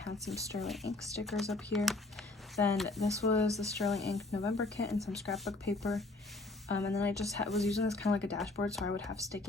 some sterling ink stickers up here. Then this was the sterling ink November kit and some scrapbook paper, and then I just was using this kind of like a dashboard, so I would have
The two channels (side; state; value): right; quieter; 3.0 dB